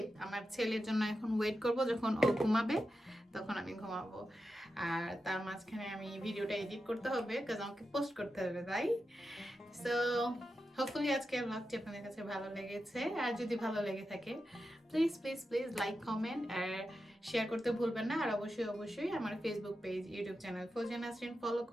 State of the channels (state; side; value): normal; both; correlation 0.90